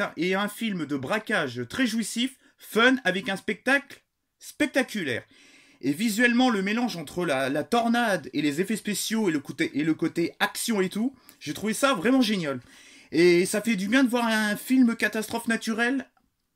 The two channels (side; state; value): both; identical; correlation 1.00